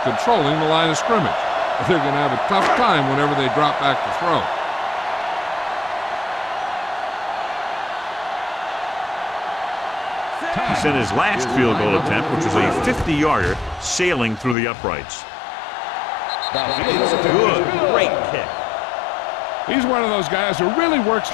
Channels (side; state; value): right; drops out; at 14.6 s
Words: controlling the line of scrimmage. But they're going to have a tough time whenever they drop back to throw. He sent his last field goal attempt, which was a 50-yarder, sailing through the uprights. It's good. Great kick. He's one of those guys who really works